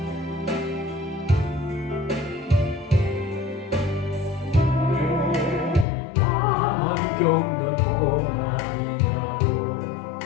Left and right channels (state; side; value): drops out; right; at 5.9 s